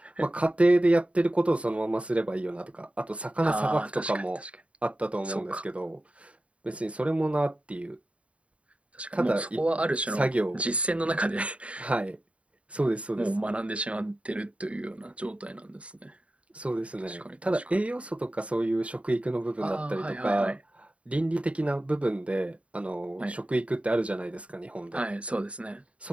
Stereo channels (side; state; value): left; late; 0.063 ms